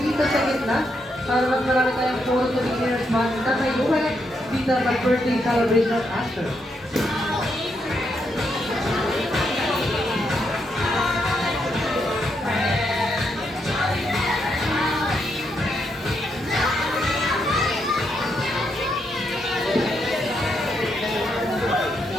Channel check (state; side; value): normal; both; correlation 0.79